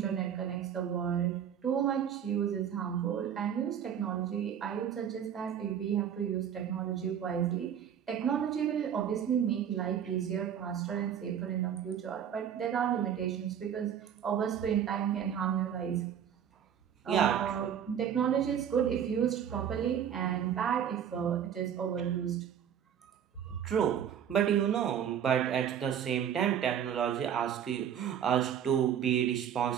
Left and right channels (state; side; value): quieter; left; 8.9 dB